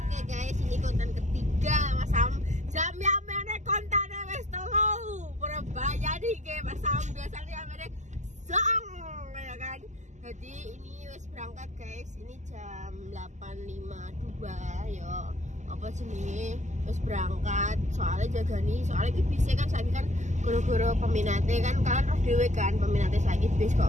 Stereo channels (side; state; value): left; late; 0.34 ms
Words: Oke guys, ini konten ketiga Mas Sam. Jam yang mana kontennya wes telu Surabaya nih ke Mas Sam. Biasanya mana song ya kan. Jadi ini wes berangkat guys. Ini jam 8.52 yo. Apa jenenge wis berangkat soalnya jaga nih soalnya iki bis kan saiki kan goro-goro peminatnya kan kalian roh dhewe kan peminatnya saiki bis